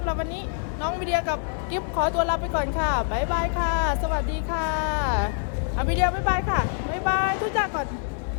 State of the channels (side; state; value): right; silent; 61 dB below the other